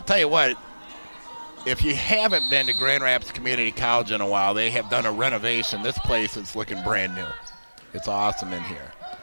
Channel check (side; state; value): both; inverted; correlation -1.00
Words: tell you what, if you haven't been to Grand Rapids Community College in a while, they have done a renovation. This place is looking brand new. It's awesome in here.